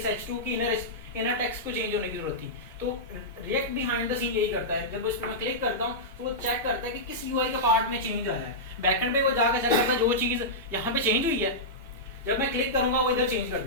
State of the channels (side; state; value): both; normal; correlation -0.12